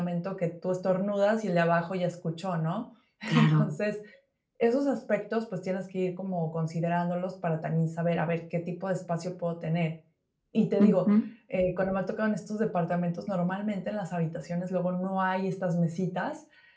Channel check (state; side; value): identical; both; correlation 1.00